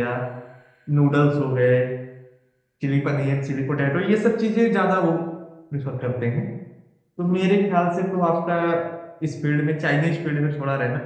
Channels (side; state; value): both; identical; correlation 1.00